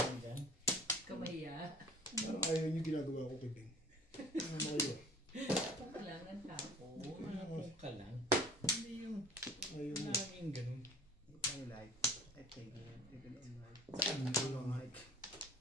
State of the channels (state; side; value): normal; both; correlation 0.48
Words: dyan. Kamaya. Parang ayaw niyo ginagawa ko kay Beng. Ano mo kayo? Kailangan tapo. Kung ka lang. Hindi yung Ayaw niyo. laging ganun. I like. I take it. Even on like. Hindi Long hike.